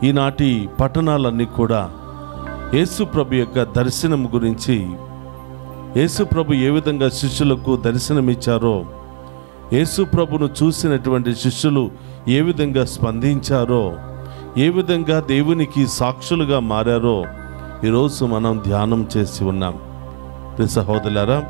ఈనాటి పట్టణాలన్నీ కూడా యేసు ప్రభు యొక్క దర్శనం గురించి, యేసు ప్రభు ఏ విధంగా శిష్యులకు దర్శనమిచ్చారో, యేసు ప్రభును చూసినటువంటి శిష్యులు ఏ విధంగా స్పందించారో, ఏ విధంగా దేవునికి సాక్షులుగా మారారో ఈరోజు మనం ధ్యానం చేసి ఉన్నాం. ప్రియ సహోదరులారా,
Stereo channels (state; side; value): silent; left; digital silence